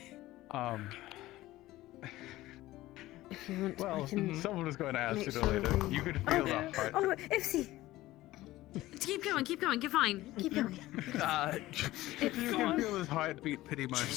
If you want, Well, I can someone was going to ask make you sure later. we- You could feel that part. Oh, Ipsy! Keep going, you're fine. Keep going. You can feel his heartbeat pretty much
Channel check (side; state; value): right; quieter; 16.8 dB